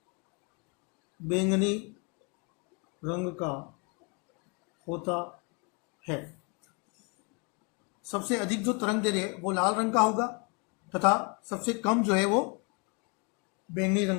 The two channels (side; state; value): right; quieter; 33.5 dB